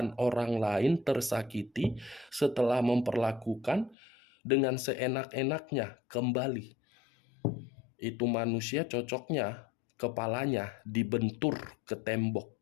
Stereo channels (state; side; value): drops out; right; at 4.0 s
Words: orang lain tersakiti setelah memperlakukan dengan seenak-enaknya kembali. Itu manusia cocoknya kepalanya dibentur ke tembok